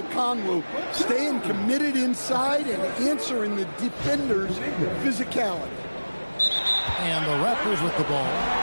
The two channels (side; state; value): both; inverted; correlation -1.00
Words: Okongwu. Staying committed inside and answering the defender's physicality. And the Raptors with the ball.